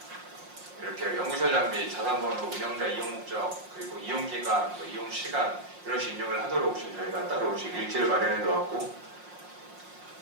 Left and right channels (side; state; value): left; late; 5.6 ms